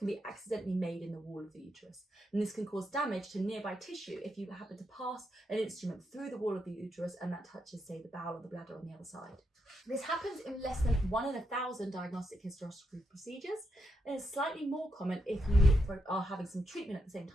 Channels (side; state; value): both; normal; correlation 0.82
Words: be accidentally made in the wall of the uterus. And this can cause damage to nearby tissue if you happen to pass an instrument through the wall of the uterus and that touches, say, the bowel or the bladder on the other side. This happens in less than 1 in 1,000 diagnostic hysteroscopy procedures, and it's slightly more common if you are having some treatment at the same